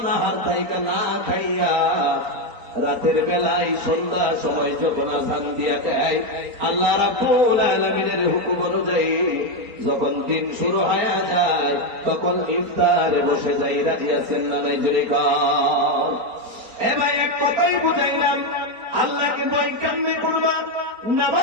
থাইকা না খাইয়া রাতের বেলায় সন্ধ্যার সময় যখন আযান দিয়া দেয়, আল্লাহ রাব্বুল আলামিনের হুকুম অনুযায়ী যখন দিন শুরু হয়ে যায়, তখন ইফতারে বসে যাই। রাজি আছেন না নাই? জোরে কর। এ ভাই, এক কথাই বুঝাইলাম, আল্লাহকে ভয় কেমনে করবা?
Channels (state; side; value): late; left; 4.3 ms